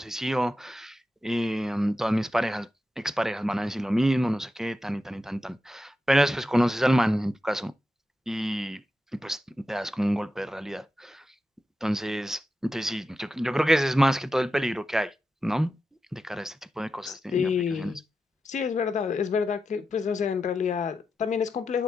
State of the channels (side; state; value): both; normal; correlation 0.89